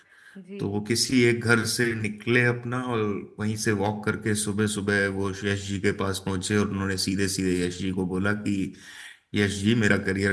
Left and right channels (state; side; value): identical; both; correlation 1.00